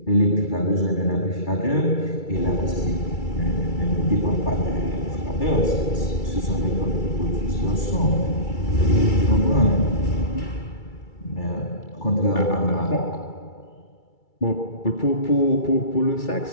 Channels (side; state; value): right; late; 2.3 ms